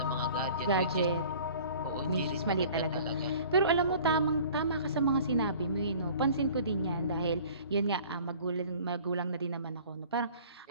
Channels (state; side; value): inverted; both; correlation -0.48